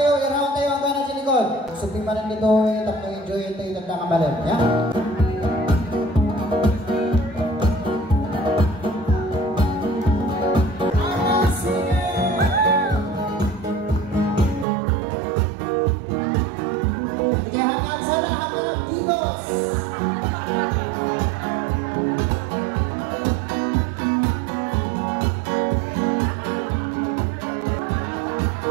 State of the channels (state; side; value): drops out; left; at 14.7 s